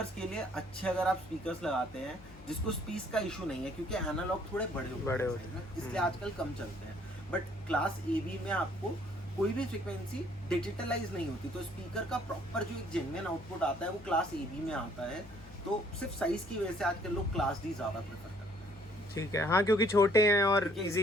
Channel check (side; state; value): both; normal; correlation 0.62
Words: के लिए अच्छे अगर आप स्पीकर्स लगाते हैं जिसको स्पीस का इशू नहीं है, क्योंकि एनालॉग थोड़े बड़े होते हैं इसलिए आजकल कम चलते हैं। बट क्लास ए बी में आपको कोई भी फ्रीक्वेंसी डिजिटलाइज नहीं होती, तो स्पीकर का प्रॉपर जो एक जेन्युइन आउटपुट आता है वो क्लास ए बी में आता है। तो सिर्फ साइज की वजह से आजकल लोग क्लास डी ज्यादा प्रेफर करते हैं। ठीक है। हाँ, क्योंकि छोटे हैं और